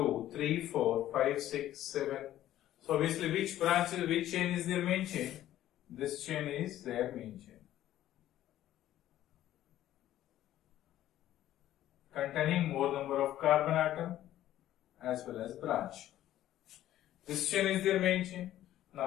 3, 4, 5, 6, 7. So obviously which branch is, which chain is their main chain? This chain is their main chain. Containing more number of carbon atom as well as branch. This chain is their main chain.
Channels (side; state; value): right; quieter; 13.1 dB